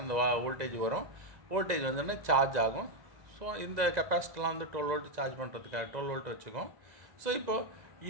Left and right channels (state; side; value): late; left; 1.9 ms